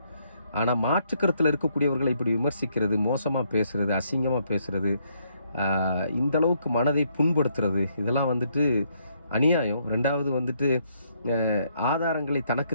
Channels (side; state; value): both; inverted; correlation -0.72